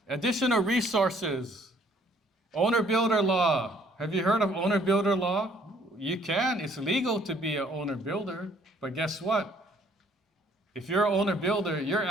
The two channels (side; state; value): both; normal; correlation 0.62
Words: additional resources. Owner-builder law. Have you heard of owner-builder law? You can, it's legal to be an owner-builder, but guess what? If you're an owner-builder, you're